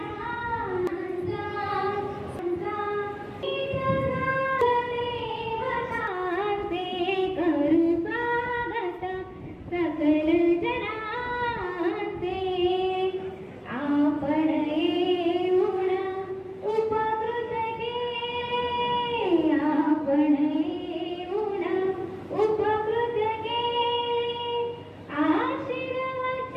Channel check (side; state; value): both; identical; correlation 1.00